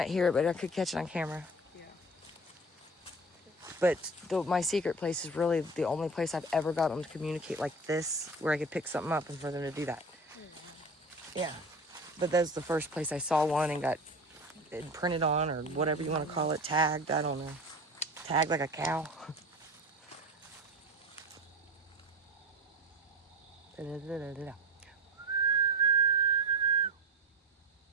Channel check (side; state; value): both; normal; correlation 0.32